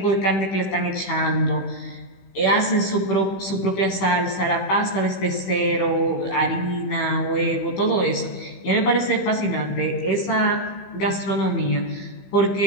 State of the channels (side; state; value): right; late; 16 ms